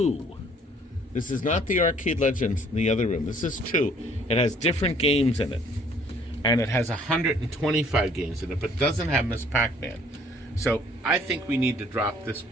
This is not the Arcade Legends in the other room. This is 2. It has different games in it. And it has 125 games in it, but doesn't have Miss Pac-Man. So I think we need to drop this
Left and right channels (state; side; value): normal; both; correlation 0.59